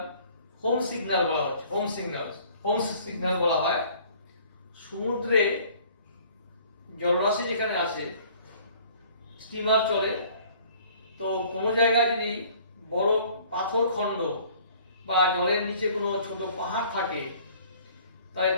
বলা হচ্ছে, হোম সিগন্যাল বলা হয়। সমুদ্রে জলরাশি যেখানে আছে, স্টিমার চলে, তো কোনো জায়গায় যদি বড় পাথর খণ্ড বা জলের নিচে কোনো ছোট পাহাড় থাকে, তাহলে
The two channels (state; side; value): inverted; both; correlation -0.54